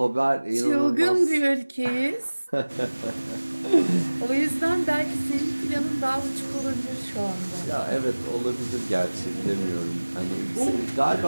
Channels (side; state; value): both; inverted; correlation -1.00